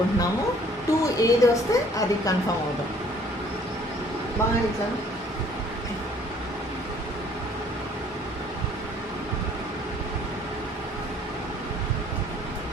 2 ఏది వస్తే అది కన్ఫర్మ్ అవుదాం. బాగా ఇట్లా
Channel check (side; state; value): both; normal; correlation 0.58